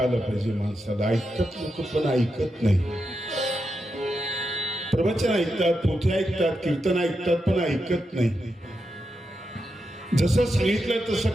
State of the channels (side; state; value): both; normal; correlation 0.86